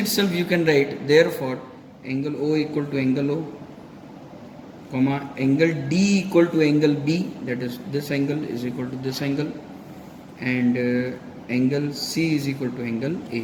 you can write, therefore angle O equal to angle O, comma angle D equal to angle B, that is this angle is equal to this angle, and angle C is equal to angle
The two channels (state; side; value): identical; both; correlation 1.00